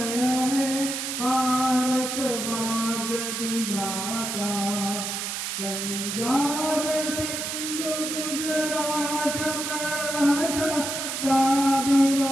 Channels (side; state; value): right; noise; hiss, 3 dB below the sound